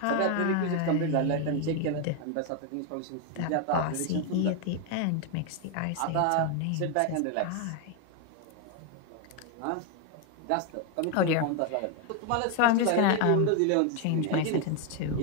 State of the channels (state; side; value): different; both; correlation 0.01